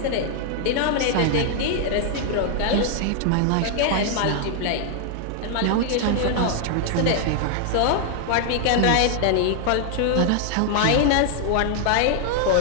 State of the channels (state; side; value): different; both; correlation 0.00